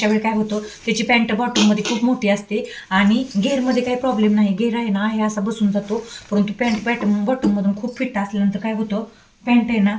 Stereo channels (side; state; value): both; identical; correlation 1.00